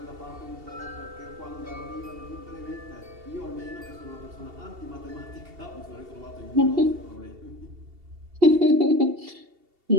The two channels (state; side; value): late; left; 2.7 ms